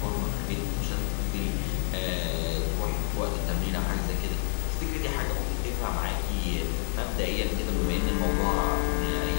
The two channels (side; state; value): right; silent; digital silence